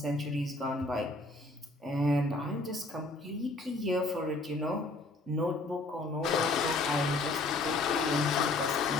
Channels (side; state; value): right; quieter; 3.0 dB